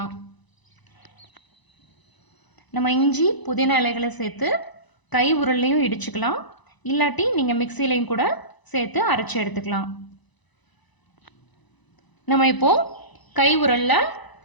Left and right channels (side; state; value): right; late; 1.0 ms